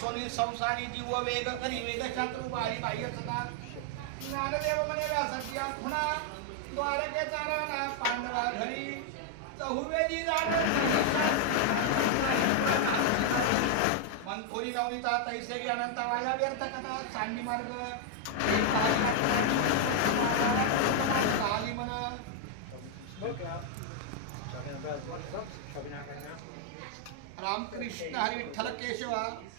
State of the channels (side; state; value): both; different; correlation 0.00